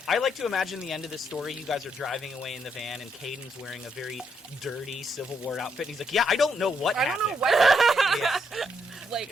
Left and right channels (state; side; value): normal; both; correlation 0.76